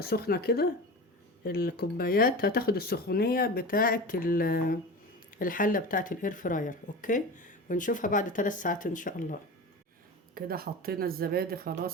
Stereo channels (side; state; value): both; normal; correlation 0.30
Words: سخنه كده، الكوبايات هتاخد السخونيه بتاعه الحله بتاعه الاير فراير. اوكي. ونشوفها بعد 3 ساعات ان شاء الله. كده حطينا الزبادي